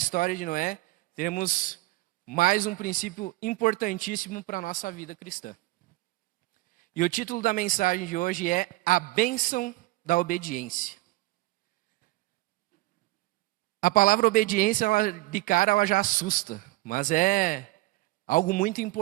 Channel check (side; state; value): left; quieter; 19.8 dB